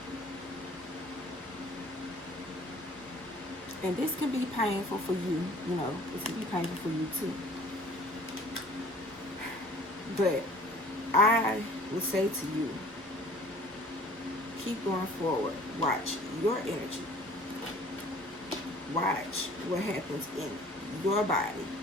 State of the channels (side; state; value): both; normal; correlation 0.50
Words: And this can be painful for you, you know, this can be painful for you too. But I would say to you, keep going forward. Watch your energy. Watch what happens in your body.